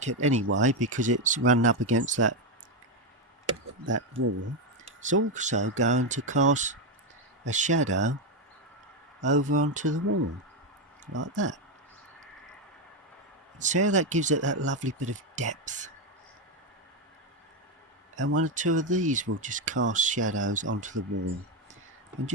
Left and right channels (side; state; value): both; normal; correlation 0.07